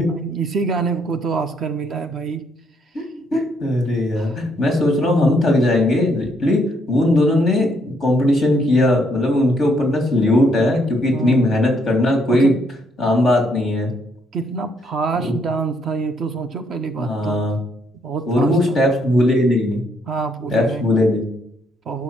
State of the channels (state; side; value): normal; both; correlation 0.72